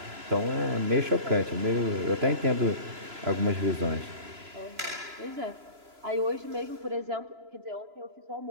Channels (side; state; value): left; late; 3.0 ms